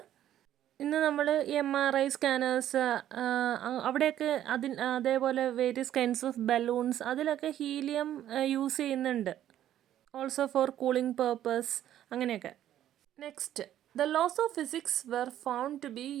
ഇന്ന് നമ്മൾ MRI സ്കാനേഴ്സ് അവിടെയൊക്കെ അതേപോലെ വേരിയസ് കൈൻഡ്സ് ഓഫ് ബലൂൺസ് അതിലൊക്കെ ഹീലിയം യൂസ് ചെയ്യുന്നുണ്ട്. ഓൾസോ ഫോർ കൂളിംഗ് പേർപ്പസ് അങ്ങനെയൊക്കെ. Next, the laws of physics were found to be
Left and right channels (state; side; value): quieter; left; 11.7 dB